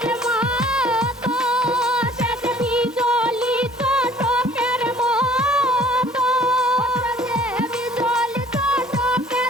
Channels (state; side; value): normal; both; correlation 0.55